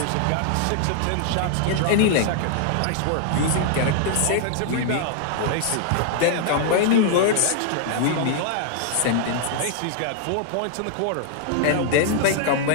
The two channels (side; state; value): both; different; correlation -0.01